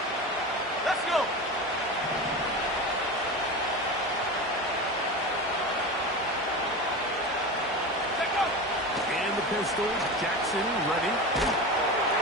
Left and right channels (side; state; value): both; normal; correlation 0.26